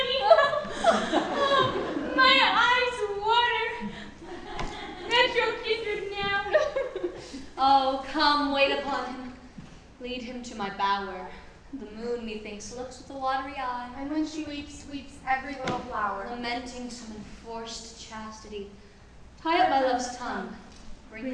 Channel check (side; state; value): both; identical; correlation 1.00